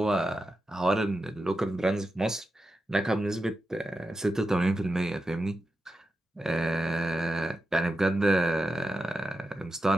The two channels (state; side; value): normal; both; correlation 0.90